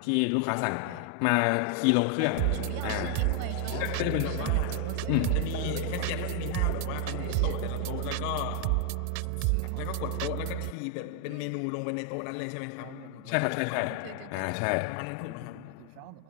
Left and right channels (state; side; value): different; both; correlation 0.00